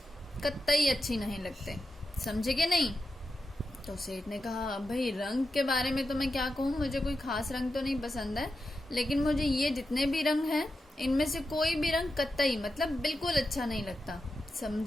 कतई अच्छी नहीं लगते। समझे कि नहीं। तो सेठ ने कहा, भाई रंग के बारे में तो मैं क्या कहूँ, मुझे कोई खास रंग तो नहीं पसंद है, लेकिन मुझे ये जितने भी रंग हैं इनमें से कोई भी रंग कतई मतलब बिल्कुल अच्छा नहीं लगता।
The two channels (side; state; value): both; normal; correlation 0.89